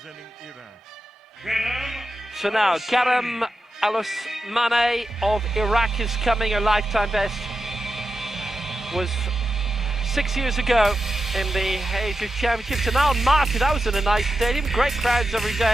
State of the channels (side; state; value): both; normal; correlation 0.89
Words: Iran. So now, Karam Al-Osmani of Iraq is coming. Her lifetime best was 6 years ago in the Asia Championships. And now Marty, that was in a nice stadium. Great crowds every